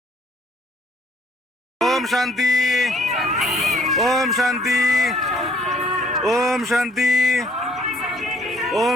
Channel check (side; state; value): both; normal; correlation 0.61